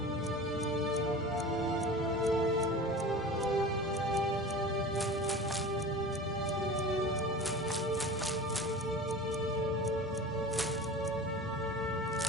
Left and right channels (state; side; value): normal; both; correlation 0.35